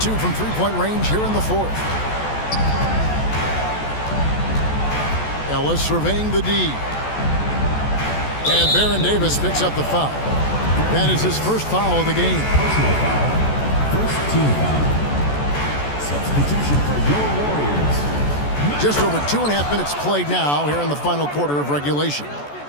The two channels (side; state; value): right; late; 14 ms